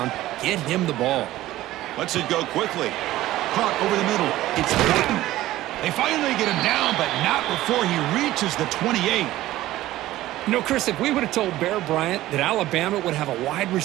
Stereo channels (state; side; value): quieter; left; 15.5 dB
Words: get him the ball. Lets it go quickly. Caught over the middle. It's Gordon. They finally get him down, but not before he reaches the 28. You know, Chris, if we would have told Bear Bryant that Alabama would have a wide